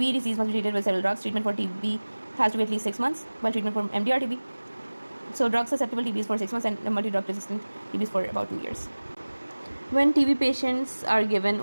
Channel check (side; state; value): both; inverted; correlation -1.00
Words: disease must be treated with several drugs. Treatment for TB has to be at least 6 months, while treatment for MDR-TB. So drug-susceptible TB is for 6 months and multi-drug resistant TB is for about 2 years. When TB patients are given